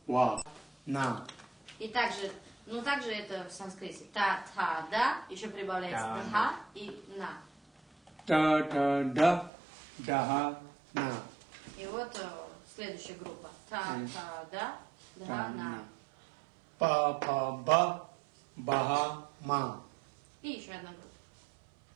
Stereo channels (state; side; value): drops out; left; at 9.5 s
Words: wa, na. И также, также это в санскрите. Та, та, да, еще прибавляется да и на. Ta, ta, da, daha, na. И вот следующая группа. Та, та, да, на. Pa, pa, ba, baha, ma. И еще одна группа.